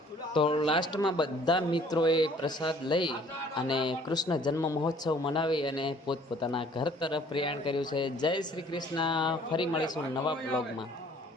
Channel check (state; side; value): normal; both; correlation 0.57